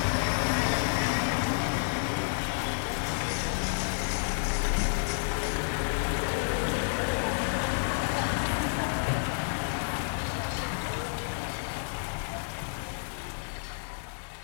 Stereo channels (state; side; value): silent; right; digital silence